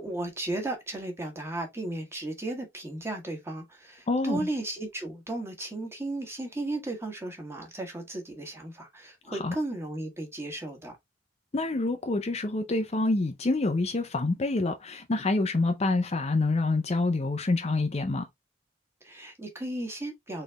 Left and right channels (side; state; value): both; normal; correlation 0.71